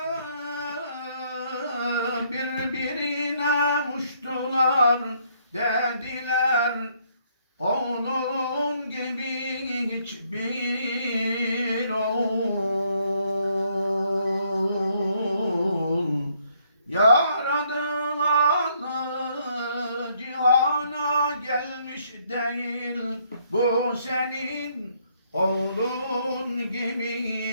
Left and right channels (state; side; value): inverted; both; correlation -0.69